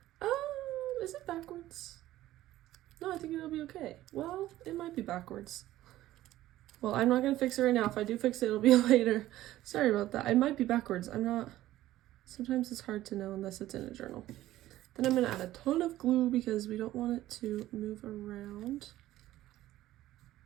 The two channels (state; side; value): quieter; left; 14.8 dB